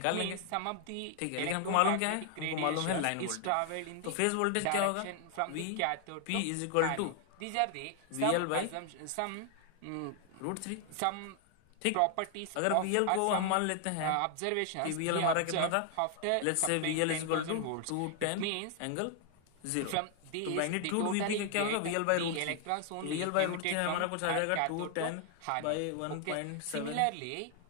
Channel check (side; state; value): both; different; correlation 0.00